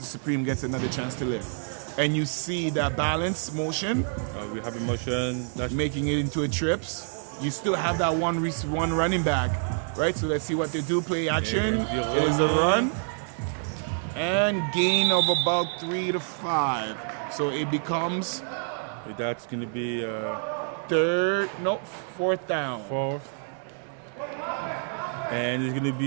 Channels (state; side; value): silent; left; 60 dB below the other